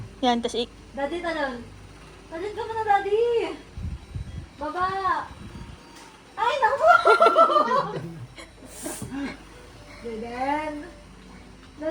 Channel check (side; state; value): both; identical; correlation 1.00